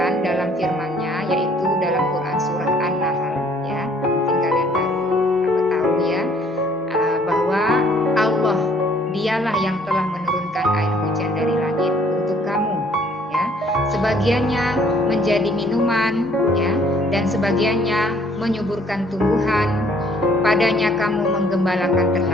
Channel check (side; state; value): both; normal; correlation 0.60